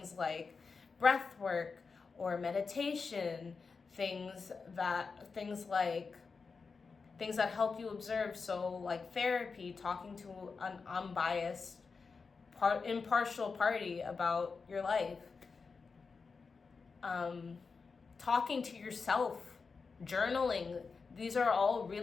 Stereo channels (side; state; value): right; quieter; 4.8 dB